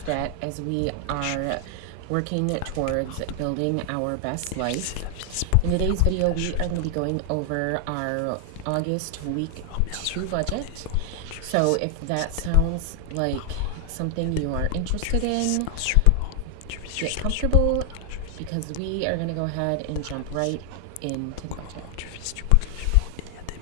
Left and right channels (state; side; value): different; both; correlation 0.00